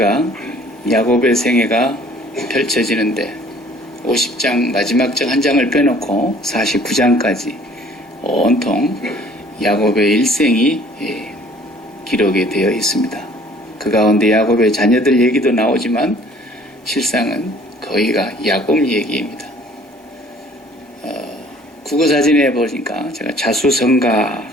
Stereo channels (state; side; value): normal; both; correlation 0.54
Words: 야곱의 생애가 펼쳐지는데 50장 마지막 장 한 장을 빼놓고 49장까지 온통 야곱의 일생이 기록이 되어 있습니다. 그 가운데 야곱의 자녀들 얘기도 나오지만 실상은 거의가 야곱 얘기입니다. 국어사전에 보니까 제가 자수성가